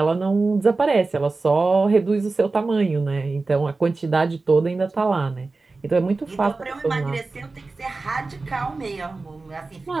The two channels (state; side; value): quieter; left; 3.7 dB